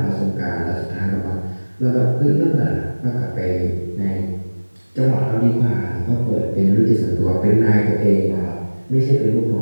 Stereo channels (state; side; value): inverted; both; correlation -1.00